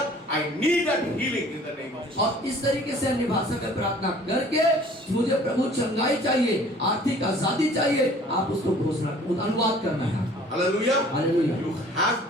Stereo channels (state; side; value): normal; both; correlation 0.51